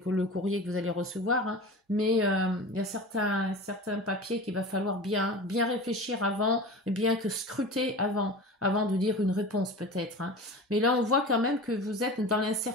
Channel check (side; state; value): both; normal; correlation 0.33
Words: courrier que vous allez recevoir, hein, mais il y a certains papiers qu'il va falloir bien réfléchir avant, bien que scruter avant de dire une réponse peut-être. Hein. Mais là, on voit quand même que vous êtes dans